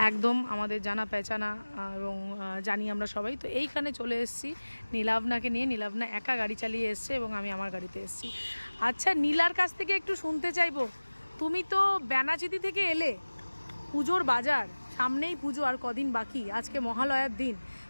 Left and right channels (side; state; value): both; inverted; correlation -1.00